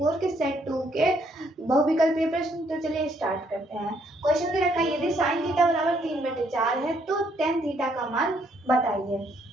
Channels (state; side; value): normal; both; correlation 0.69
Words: के सेट 2 के बहुविकल्पीय प्रश्न। तो चलिए स्टार्ट करते हैं। क्वेश्चन दे रखा है यदि साइन थीटा बराबर 3/4 है तो टेन थीटा का मान बताइए।